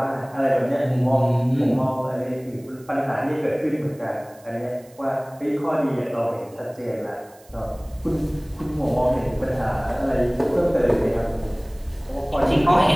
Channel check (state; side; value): noise; right; hiss, 28 dB below the sound